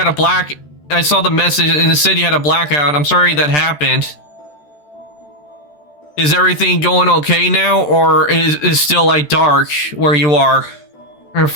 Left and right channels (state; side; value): late; right; 13 ms